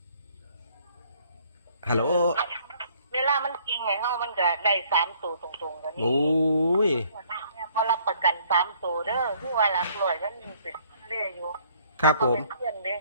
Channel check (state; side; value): inverted; both; correlation -0.62